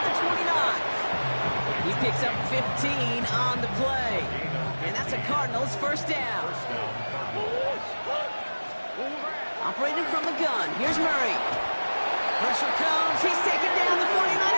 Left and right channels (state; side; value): inverted; both; correlation -1.00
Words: the 29. He picks up 15 on the play. And that's a Cardinals 1st down. Operating from the gun, here's Murray. Pressure comes, he's taken down, the